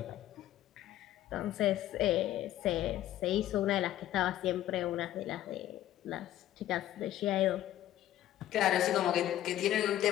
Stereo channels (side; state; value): right; quieter; 13.1 dB